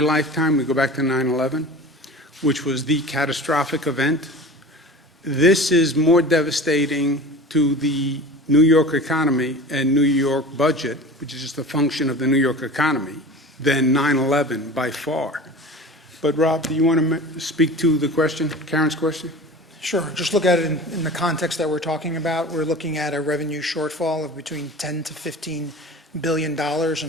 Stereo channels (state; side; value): normal; both; correlation 0.37